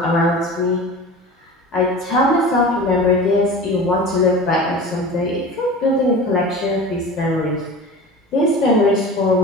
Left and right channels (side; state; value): both; normal; correlation 0.35